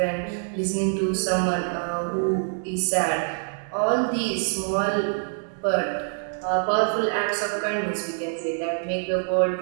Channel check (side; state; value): left; silent; 62 dB below the other